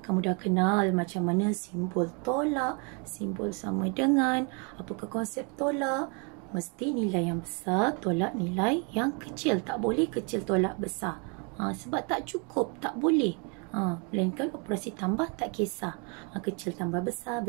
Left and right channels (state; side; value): quieter; left; 35.0 dB